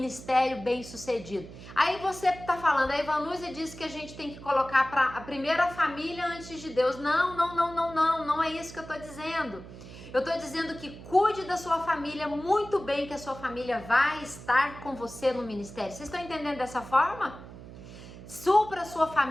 bem-sucedido. Aí você tá falando, a Ivanúzia disse que a gente tem que colocar a primeira família antes de Deus. Não é isso que eu tô dizendo. Eu tô dizendo que cuide da sua família muito bem, que a sua família vai estar com você no ministério. Vocês estão entendendo dessa forma? Supra a sua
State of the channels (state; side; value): noise; right; hum, 15 dB below the sound